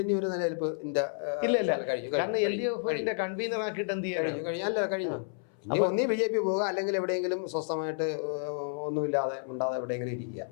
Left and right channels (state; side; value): silent; right; 57 dB below the other